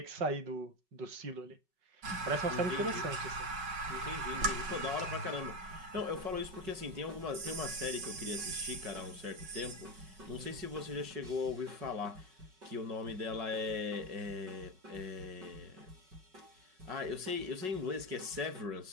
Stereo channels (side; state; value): left; late; 5.3 ms